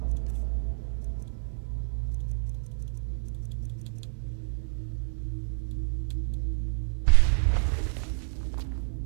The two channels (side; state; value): left; silent; digital silence